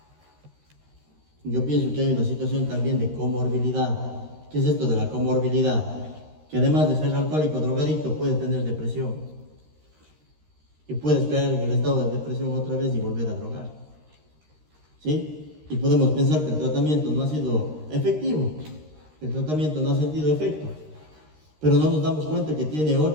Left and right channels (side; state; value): left; late; 13 ms